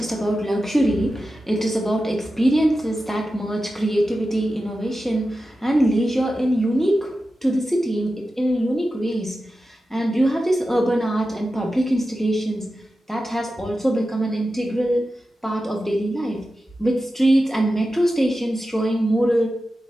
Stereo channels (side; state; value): both; normal; correlation 0.92